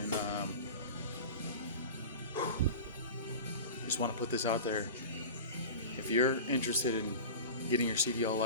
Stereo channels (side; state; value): both; inverted; correlation -0.32